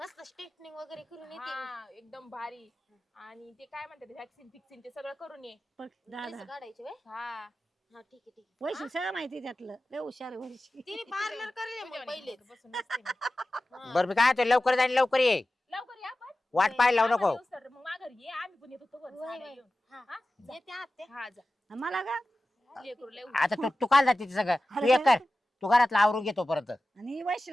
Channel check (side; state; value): both; normal; correlation 0.95